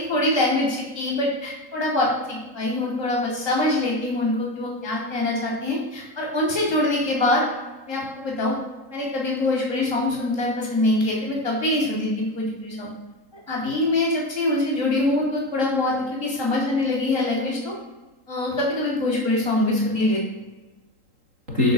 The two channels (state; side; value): late; left; 3.8 ms